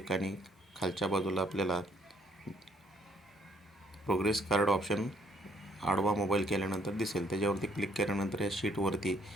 खालच्या बाजूला आपल्याला प्रोग्रेस कार्ड ऑप्शन आडवा मोबाईल केल्यानंतर दिसेल. त्याच्यावरती क्लिक केल्यानंतर या शीटवरती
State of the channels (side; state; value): both; normal; correlation 0.66